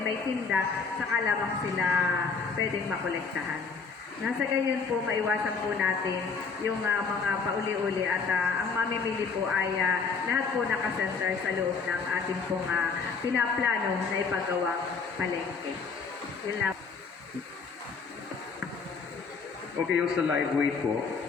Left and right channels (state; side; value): quieter; right; 5.1 dB